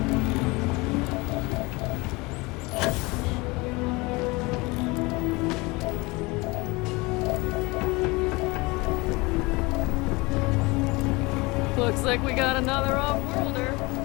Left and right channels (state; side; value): quieter; right; 24.4 dB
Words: Looks like we got another off-worlder.